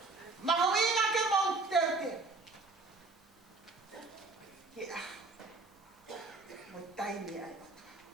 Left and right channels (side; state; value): left; quieter; 3.7 dB